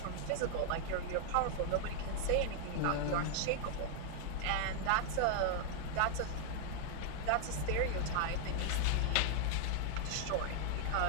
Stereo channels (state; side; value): different; both; correlation 0.00